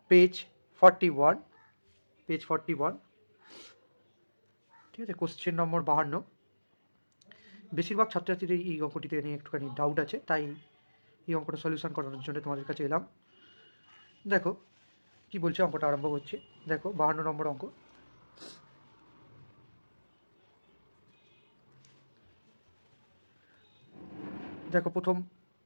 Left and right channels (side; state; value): both; inverted; correlation -1.00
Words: পেজ 41, ঠিক আছে। Question number 52। বেশিরভাগ ছাত্রছাত্রীদের এই অঙ্কটিতে নিয়ে একটুখানি ডাউট আছে, তাই এই অঙ্কটা সলিউশন করানোর জন্য তোমাদের কাছে এলাম। দেখো কি বলছে, অঙ্কটা আরম্ভ করছে। দেখো 52 নম্বর অঙ্ক। দেখো প্রথম